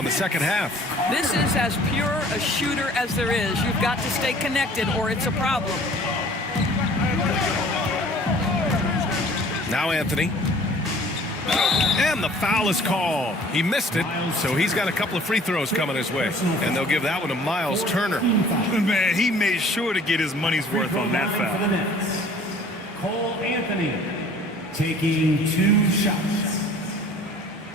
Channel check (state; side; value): normal; both; correlation 0.51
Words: the second half. This is as pure a shooter as there is. You've got to stay connected or it's a problem. Now Anthony. And the foul is called. He missed it, so he's got a couple of free throws coming his way. And they'll give that one to Miles Turner. Man, he made sure to get his money's worth on that foul. For the Nets, Cole Anthony taking 2 shots.